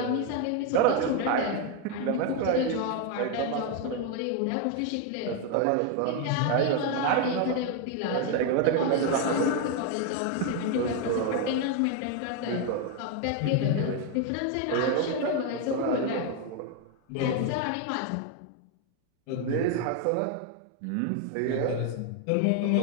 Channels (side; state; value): both; different; correlation 0.01